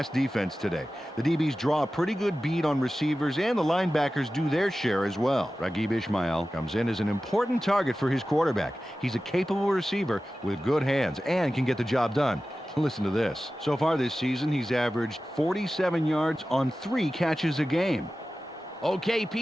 defense today. The DBs draw a pretty good beat on receivers, and the linebackers do their share as well. Raghib Ismail comes in as an important target for his quarterback. He's a capable receiver with good hands and can get the job done. Listen to this. So far this season, he's averaged 47 yards on 3 catches a game. Okay,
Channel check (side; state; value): both; normal; correlation 0.95